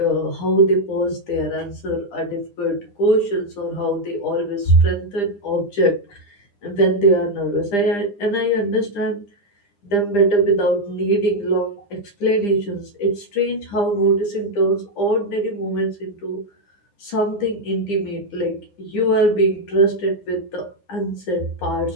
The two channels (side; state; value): right; late; 9.9 ms